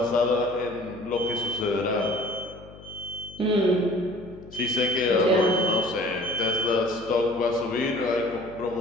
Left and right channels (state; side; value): noise; left; hum, 19 dB below the sound